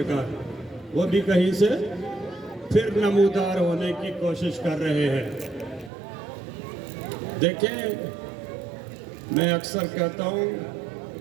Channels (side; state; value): left; drops out; at 5.9 s